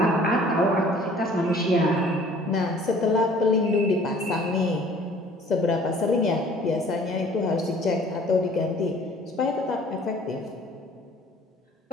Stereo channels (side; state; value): both; normal; correlation 0.53